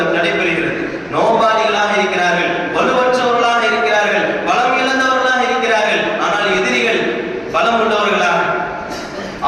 நடைபெறுகிறது. நோம்பாளிகளாக இருக்கிறார்கள், வலுவற்றவர்களாக இருக்கிறார்கள், பலம் இழந்தவர்களாக இருக்கிறார்கள். ஆனால் எதிரிகள் பலம் உள்ளவர்களாக,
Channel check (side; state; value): both; identical; correlation 1.00